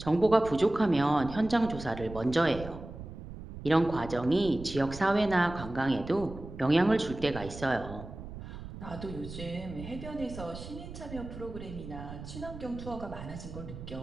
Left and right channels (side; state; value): right; noise; rumble, 12 dB below the sound